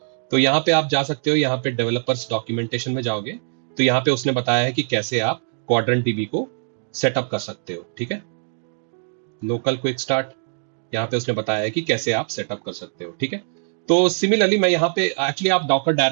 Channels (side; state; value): left; silent; digital silence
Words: तो यहाँ पे आप जा सकते हो, यहाँ पे डेवलपर्स डॉक्यूमेंटेशन में जाओगे तो यहाँ पे उसने बताया है कि कैसे आप क्वाड्रेंट डीबी को सेटअप कर सकते हो, ठीक है। लोकल क्विक स्टार्ट, यहाँ पे उसने बताया है कि कैसे आप सेटअप कर सकते हो, ठीक है। तो सिमिलरली मैं यहाँ पे एक्चुअली आप डॉकर